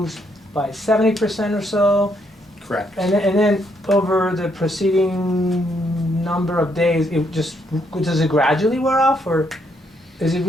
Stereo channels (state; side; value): normal; both; correlation 0.73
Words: by 70% or so. Correct. And then over the preceding number of days, does it gradually wear off, or is it